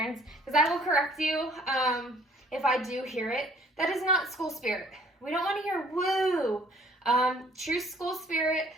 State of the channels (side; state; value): both; normal; correlation 0.58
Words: because I will correct you if I do hear it. That is not school spirit. We don't want to hear woo. True school spirit,